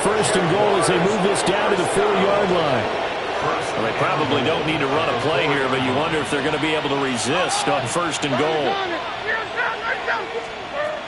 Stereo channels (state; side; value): identical; both; correlation 1.00